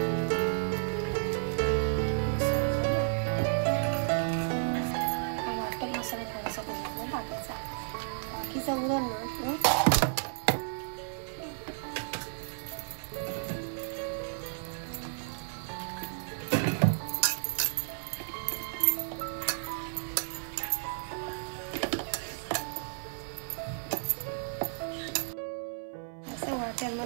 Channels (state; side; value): silent; left; 55 dB below the other